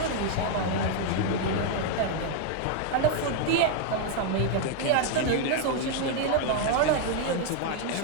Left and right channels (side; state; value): both; different; correlation 0.01